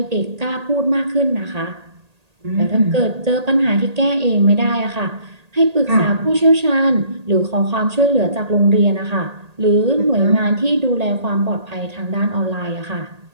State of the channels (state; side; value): late; left; 1.8 ms